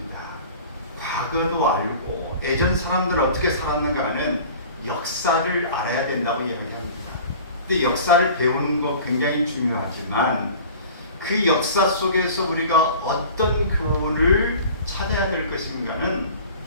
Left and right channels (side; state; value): both; inverted; correlation -0.43